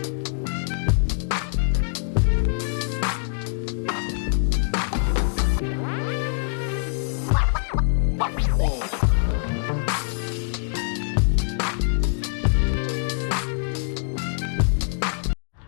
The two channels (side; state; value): right; silent; 62 dB below the other